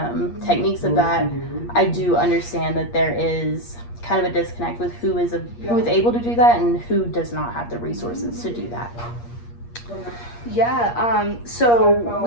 techniques of that, I do understand that there is kind of a disconnect with who is able to do that and who does not have the resources to do that. Yeah, so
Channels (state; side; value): late; right; 8.5 ms